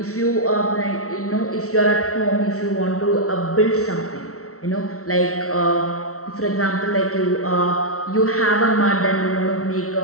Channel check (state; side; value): late; right; 0.64 ms